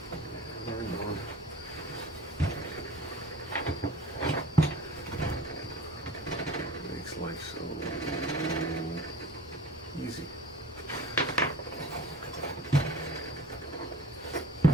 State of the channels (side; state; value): both; normal; correlation 0.43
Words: Learned on. Makes life so easy.